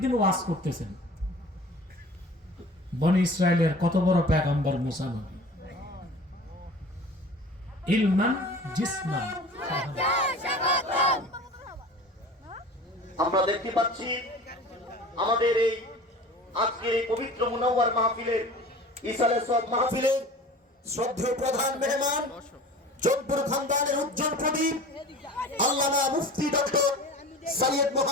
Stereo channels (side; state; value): both; normal; correlation 0.40